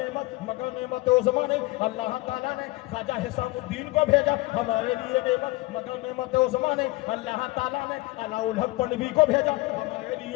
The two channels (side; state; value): right; quieter; 21.3 dB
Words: नेमत, मगर नेमत उस्मा नहीं। अल्लाह ताला ने ख्वाजा हिसामुद्दीन को भेजा, हमारे लिए नेमत, मगर नेमत उस्मा नहीं। अल्लाह ताला ने अलाउल हक पनवी को भेजा, हमारे